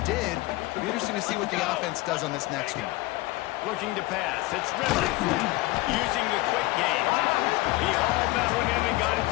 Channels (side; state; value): right; quieter; 20.2 dB